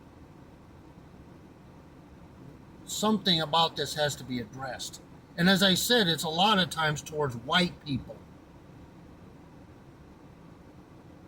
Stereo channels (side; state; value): both; identical; correlation 1.00